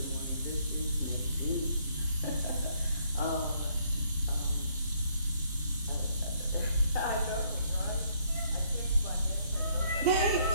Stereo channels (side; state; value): both; inverted; correlation -0.68